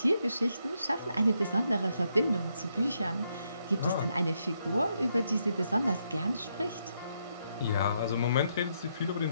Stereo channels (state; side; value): inverted; both; correlation -0.78